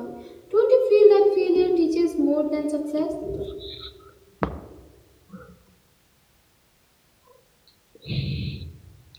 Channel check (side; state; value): both; identical; correlation 1.00